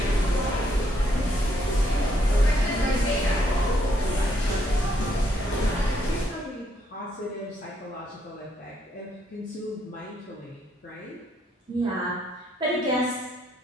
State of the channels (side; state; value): both; normal; correlation 0.73